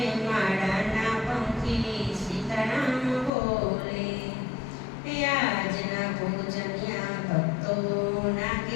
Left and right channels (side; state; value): right; drops out; at 3.3 s